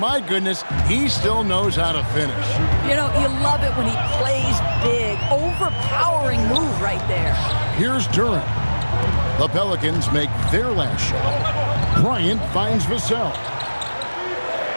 goodness, he still knows how to finish. You know, you love it when he plays big. Overpowering move right there. Here's Duran. The Pelicans make their last shot. Bryant finds Vassell.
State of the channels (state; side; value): inverted; both; correlation -1.00